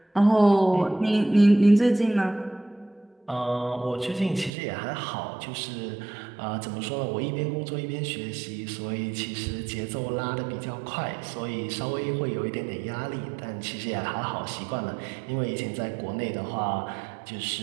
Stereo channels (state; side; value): drops out; left; at 4.5 s